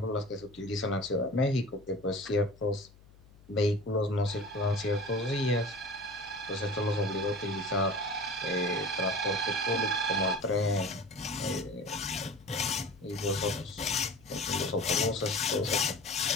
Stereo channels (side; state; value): left; noise; hum, 24 dB below the sound